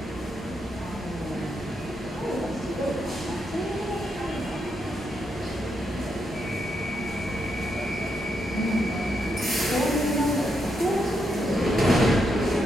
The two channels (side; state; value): both; normal; correlation 0.81